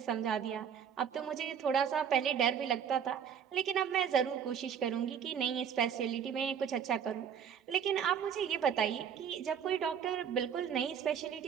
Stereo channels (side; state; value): left; quieter; 8.0 dB